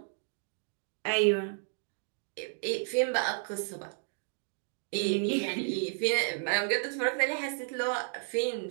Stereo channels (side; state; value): left; silent; digital silence